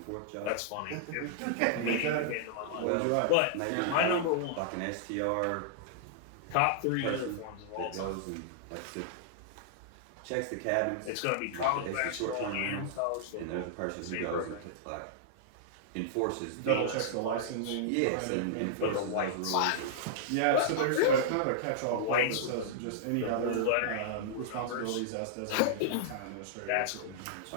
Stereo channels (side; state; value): both; different; correlation -0.02